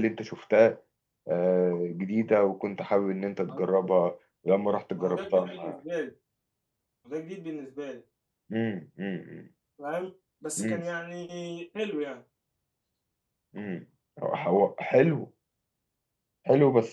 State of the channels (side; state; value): both; identical; correlation 1.00